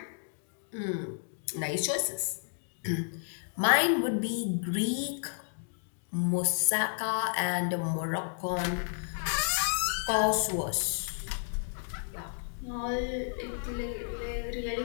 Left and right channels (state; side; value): silent; right; digital silence